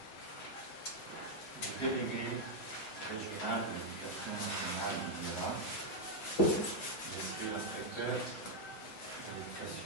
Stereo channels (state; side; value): late; right; 7.7 ms